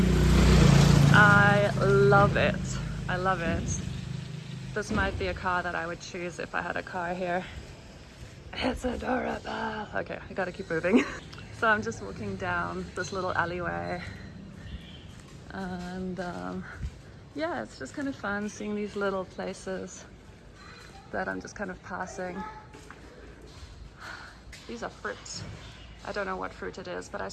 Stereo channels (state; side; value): identical; both; correlation 1.00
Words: I love it. I love it. This might be a car that I would choose if I had a car here. It's adorable. Okay, I gotta keep moving. So I'm just walking down this little alleyway, and yeah, it's just kind of fun seeing these little places that I'm just kind of passing. These are fruits. I don't know what fruit it is, but I